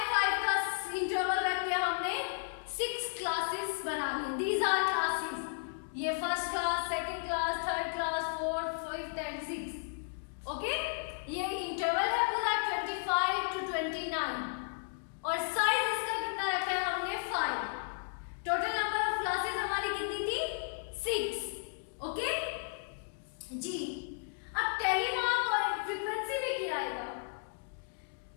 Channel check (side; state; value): right; silent; digital silence